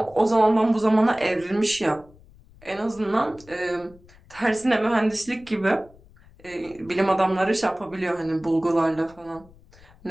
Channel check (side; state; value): left; noise; rumble, 25 dB below the sound